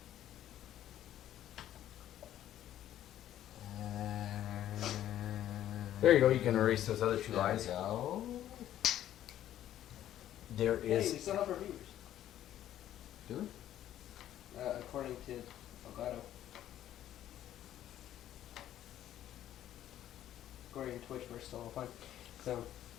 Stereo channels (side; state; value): right; quieter; 12.0 dB